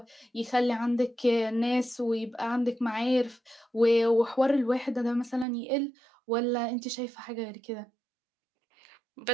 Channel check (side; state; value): left; drops out; at 5.5 s